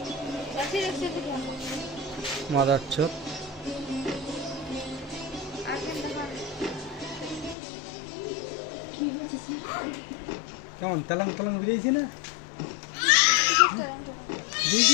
যাচ্ছে যাচ্ছে তো কেন মাদার চোদ কেমন তেলং তেলং বেরিয়েছি না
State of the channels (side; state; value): right; drops out; at 7.6 s